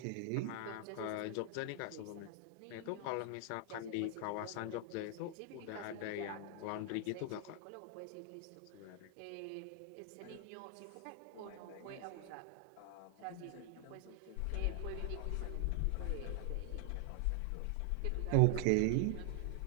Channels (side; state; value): both; different; correlation 0.00